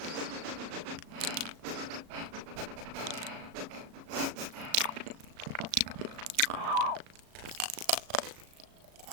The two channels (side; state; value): left; late; 36 ms